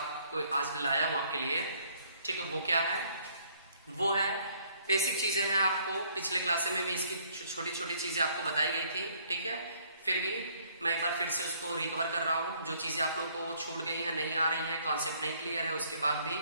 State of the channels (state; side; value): inverted; both; correlation -0.63